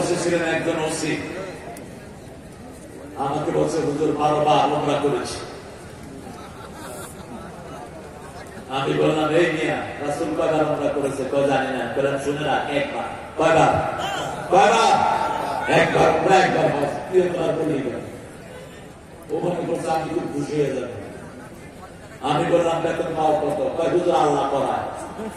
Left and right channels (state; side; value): identical; both; correlation 1.00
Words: একজন ওসি। আমাকে বলছে হুজুর 12 বার ওমরা করেছি। আমি বললাম এই মিয়া রাসূল কয়বার ওমরা করেছে? কয় জানি না। বললাম শুনে রাখ, একবার। কয়বার? কয়বার? একবার। ওমরা একবার হজ, 3 বার বলেই গেল। ও মনে করছে আমি খুব খুশি হয়ে যাবো। আমি বললাম বেতন পাও কত? কয় হুজুর আল্লাহ করায়।